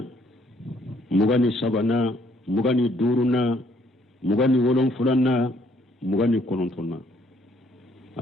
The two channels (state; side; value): normal; both; correlation 0.66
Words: mugani sabana mugani duruna mugani wolon fulanna mugani konontonna